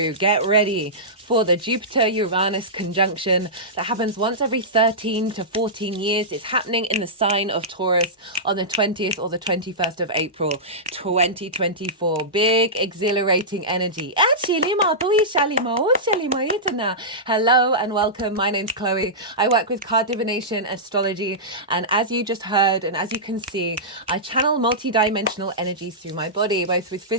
Get ready for the Jupiter-Uranus conjunction that happens once every 13 to 14 years. It's happening in the sign of Taurus on the 20th or the 21st of April, 2024. Big, exhilarating energy. Hello and welcome. My name's Chloe. I work with card divination, astrology, and as you just heard and as you can see, I channel multi-dimensional energies through my body, both with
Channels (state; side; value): normal; both; correlation -0.16